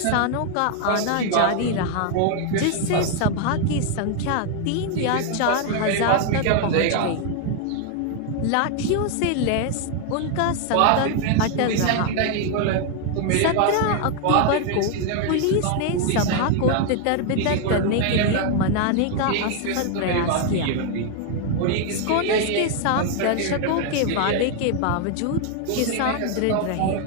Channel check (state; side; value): different; both; correlation 0.00